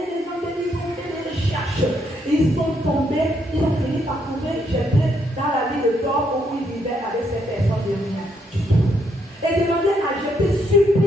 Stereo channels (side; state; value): both; normal; correlation 0.74